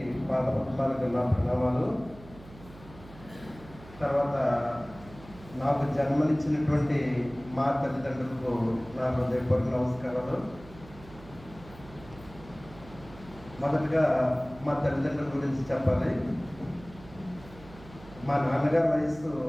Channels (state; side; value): noise; right; hum, 19 dB below the sound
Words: పాదపద్మాలకు నా ప్రణామాలు. తర్వాత నాకు జన్మనిచ్చినటువంటి మా తల్లిదండ్రులకు నా హృదయపూర్వక నమస్కారాలు. మొదటగా మా తల్లిదండ్రుల గురించి చెప్పాలి. మా నాన్నగారి వయసు